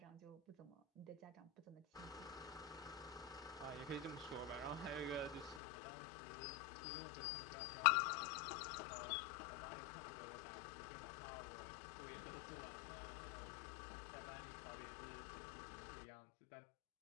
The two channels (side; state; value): right; drops out; at 5.6 s